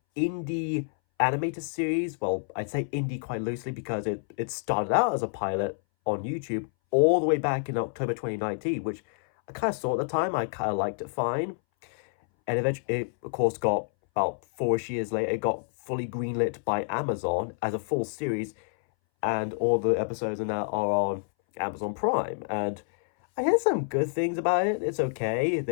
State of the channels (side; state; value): right; silent; 59 dB below the other